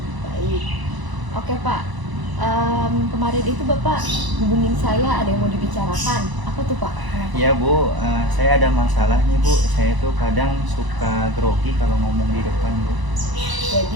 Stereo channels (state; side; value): late; left; 1.0 ms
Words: Baik. Oke Pak, kemarin itu Bapak hubungin saya ada yang mau dibicarakan. Apa tuh Pak? Ya Bu, saya ada masalah nih Bu. Saya tuh kadang suka grogi kalau ngomong di depan Bu.